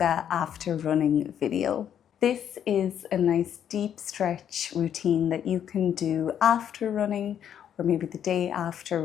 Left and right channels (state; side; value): quieter; right; 9.4 dB